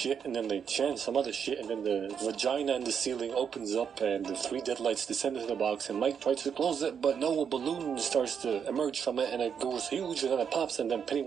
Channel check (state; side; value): quieter; left; 7.3 dB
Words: and then they chant some other shit, and then the vagina in the ceiling opens up, and the 3 dead lights descend into the box, and Mike tries to close it, but no, a balloon starts to emerge from it, and it goes huge, and then it pops, and then